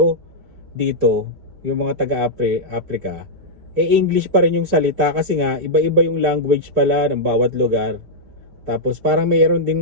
dito, yung mga taga-Africa, English pa rin yung salita kasi nga, iba-iba yung language pala ng bawat lugar. Tapos parang mayroon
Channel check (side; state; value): left; late; 4.9 ms